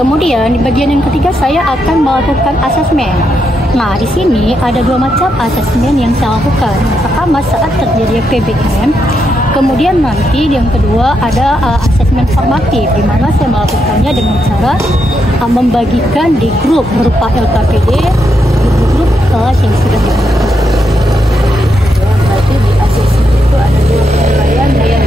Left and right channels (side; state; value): both; normal; correlation 0.81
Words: Kemudian di bagian yang ketiga saya akan melakukan asesmen. Nah, di sini ada 2 macam asesmen yang saya lakukan. Pertama, saat terjadi PBM. Kemudian nanti yang kedua ada asesmen formatif, di mana saya melakukannya dengan cara membagikan di grup berupa LKPD, grup kelas yang sudah dibentuk. Berarti di asesmen itu ada 2 penilaian yang